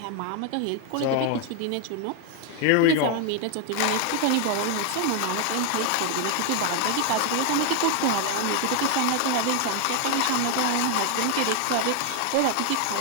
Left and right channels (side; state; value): both; different; correlation 0.01